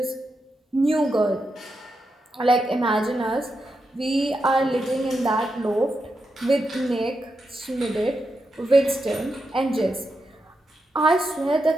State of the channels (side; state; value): both; normal; correlation 0.86